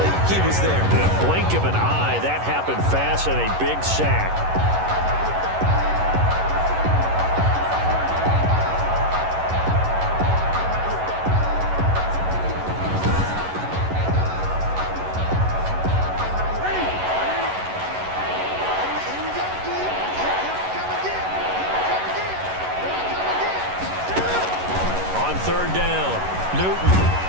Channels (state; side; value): late; left; 11 ms